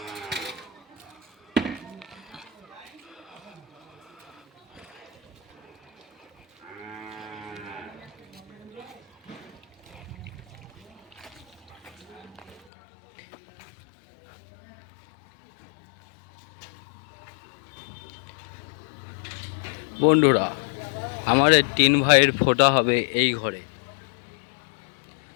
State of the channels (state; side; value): drops out; right; at 12.6 s